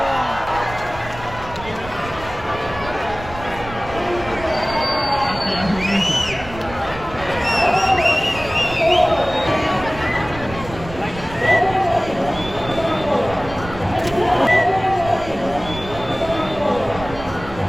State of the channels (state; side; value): noise; right; rumble, 14 dB below the sound